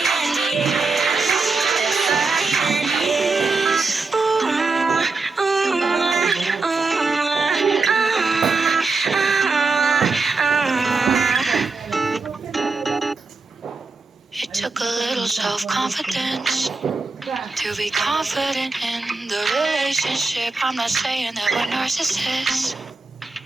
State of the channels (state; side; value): quieter; left; 3.9 dB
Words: It took a little self-confidence to be confident in the relationship. I'm not saying that we're narcissists.